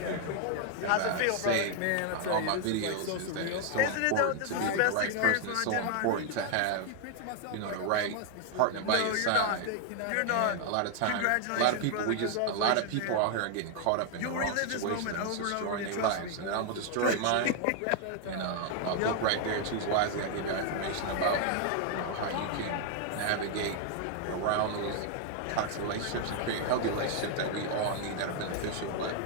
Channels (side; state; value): both; different; correlation 0.00